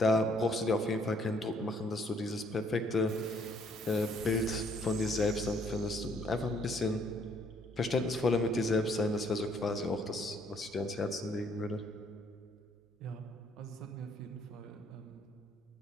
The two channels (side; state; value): both; normal; correlation 0.65